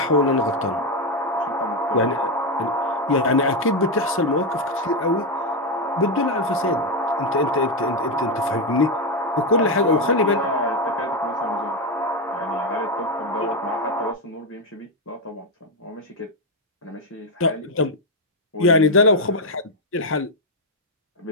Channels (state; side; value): normal; both; correlation 0.06